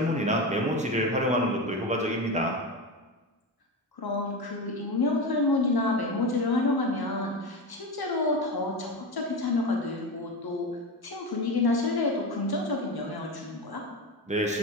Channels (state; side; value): normal; both; correlation 0.20